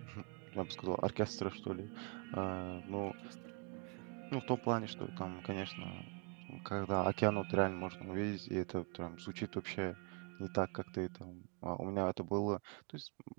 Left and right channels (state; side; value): quieter; left; 33.5 dB